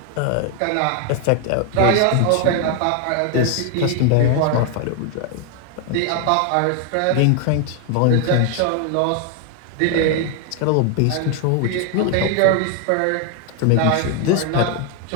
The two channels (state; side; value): different; both; correlation 0.00